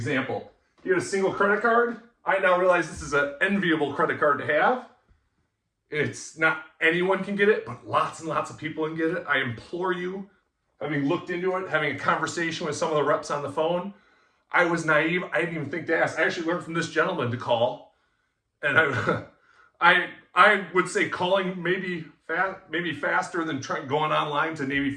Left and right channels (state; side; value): identical; both; correlation 1.00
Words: He had a single credit card. I now realize this is an enviable credit card to have. It's not anyone can get it, but lots and lots of people can get it. I implore you, having looked into it, having a conversation with some of the reps on the phone, I was naive. I didn't even think to ask. I actually learned from this gentleman to call, and I would say calling maybe faster than going online to Navy